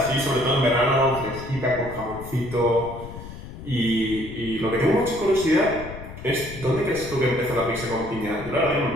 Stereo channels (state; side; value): noise; left; rumble, 12 dB below the sound